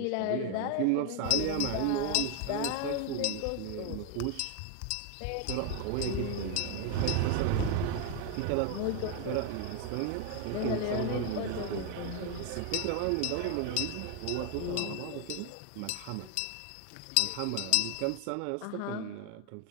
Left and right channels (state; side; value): different; both; correlation 0.01